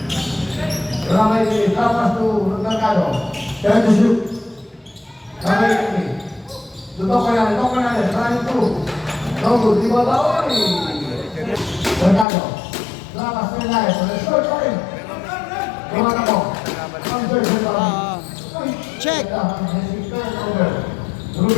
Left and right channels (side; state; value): right; drops out; at 12.2 s